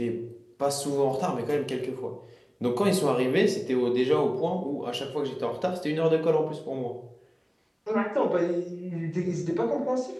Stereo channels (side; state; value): both; identical; correlation 1.00